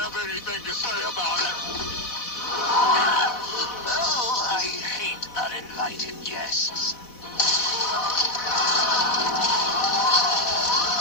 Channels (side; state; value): right; late; 4.1 ms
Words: anything to say about it. Oh, I hate uninvited guests.